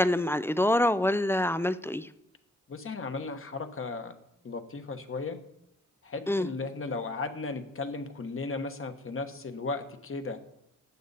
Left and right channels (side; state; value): both; normal; correlation 0.67